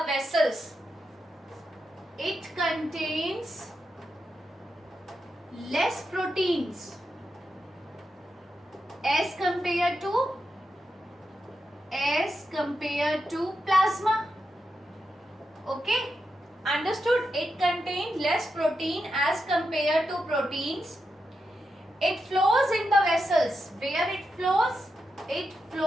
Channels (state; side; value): normal; both; correlation 0.86